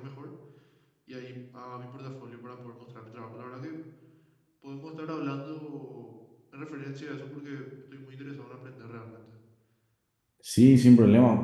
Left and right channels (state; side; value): identical; both; correlation 1.00